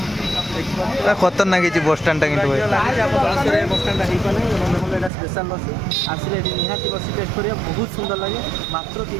ବସଷ୍ଟାଣ୍ଡ खतरनाक बसस्टाण्डटा कि बसଷ୍ଟାଣ୍ଡଟା ହେଇପାରେ। ଦେଖନ୍ତୁ ଏଇଟା ସ୍ପେଶାଲ ଲସି ଆସିଲେ ଏଠି ନିହାତି ଲସି ଟେଷ୍ଟ କରିବା ବହୁତ ସୁନ୍ଦର ଲାଗେ। ମାତ୍ର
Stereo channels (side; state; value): left; drops out; at 5.1 s